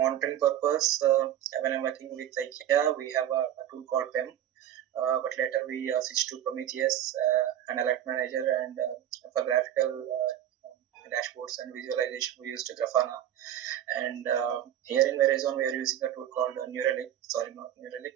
purpose. When I'm working with IKEA, we have a tool called PEM, but later we switched to Prometheus and Alert Manager, and for graphical dashboards and visualization we used Grafana. And here in Verizon we are using a tool called Neuralink. Sorry, not Neuralink.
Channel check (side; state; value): left; quieter; 11.1 dB